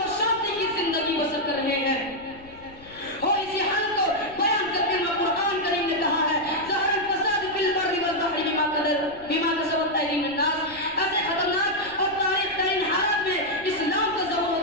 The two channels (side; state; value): left; noise; rumble, 22 dB below the sound